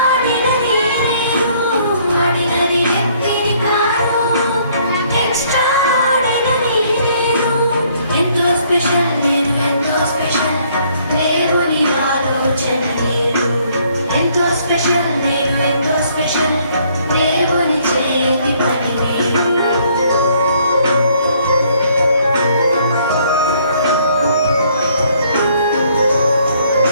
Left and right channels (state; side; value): inverted; both; correlation -0.65